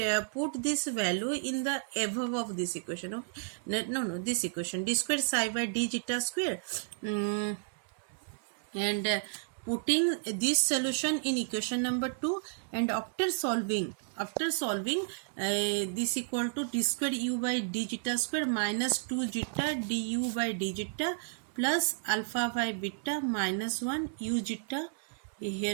put this value in the above of this equation. Okay, no, this equation d square psi by d zeta square, and putting this solution in equation number 2, and after solving this equal to d square u by d zeta square minus 2 zeta du by d zeta plus alpha by beta minus 1 u zeta. Here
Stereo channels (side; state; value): left; silent; 56 dB below the other